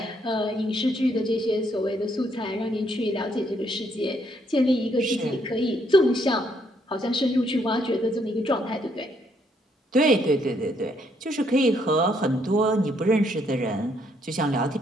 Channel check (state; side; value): normal; both; correlation 0.71